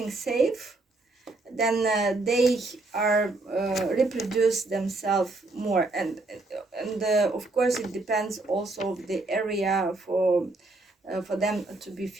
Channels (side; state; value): left; quieter; 3.1 dB